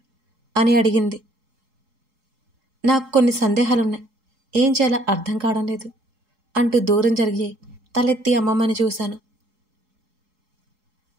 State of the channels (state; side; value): late; left; 4.7 ms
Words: అని అడిగింది. నాకు కొన్ని సందేహాలున్నాయి, ఏం చేయాలో అర్థం కావడం లేదు అంటూ దూరం జరిగి తలెత్తి అమ్మమ్మని చూశాను.